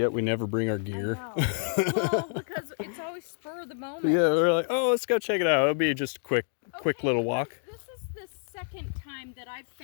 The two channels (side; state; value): right; silent; digital silence